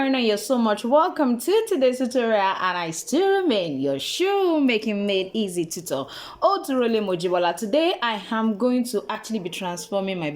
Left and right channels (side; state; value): both; identical; correlation 1.00